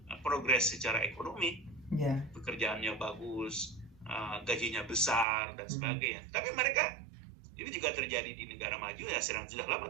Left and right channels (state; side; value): drops out; left; at 5.2 s